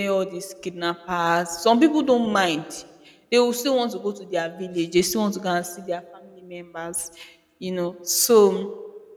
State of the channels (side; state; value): both; identical; correlation 1.00